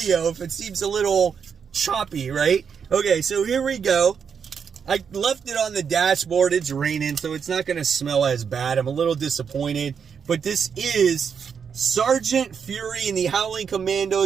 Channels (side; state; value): left; quieter; 6.8 dB